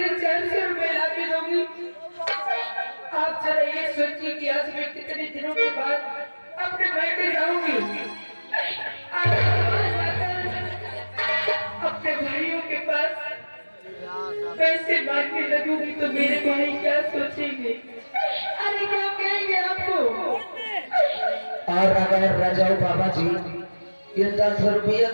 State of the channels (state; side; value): inverted; both; correlation -1.00